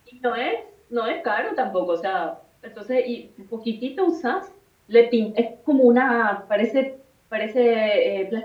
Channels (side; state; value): both; identical; correlation 1.00